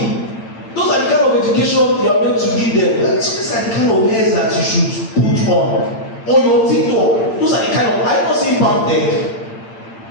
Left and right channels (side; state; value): right; late; 8.8 ms